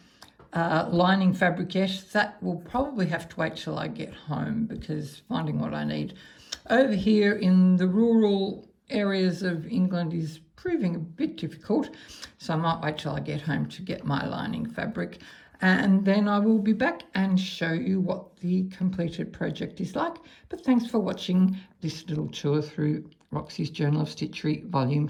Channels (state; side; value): identical; both; correlation 1.00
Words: lining fabric yet. That will probably have to wait till I get home, because finding what I need over here in the rural areas of England is proving a bit difficult, so I might wait till I get home to get my lining fabric, and then I will be back and show you what the completed project is like. But thanks for watching this little tour through Roxy's Journal of Stitchery Volume